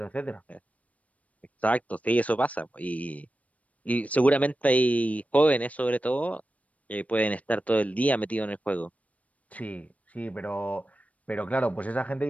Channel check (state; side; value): late; right; 0.068 ms